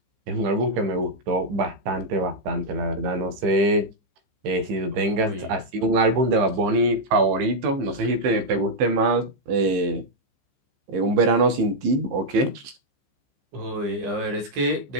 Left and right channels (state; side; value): late; left; 15 ms